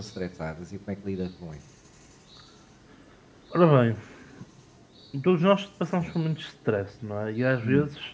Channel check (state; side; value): identical; both; correlation 1.00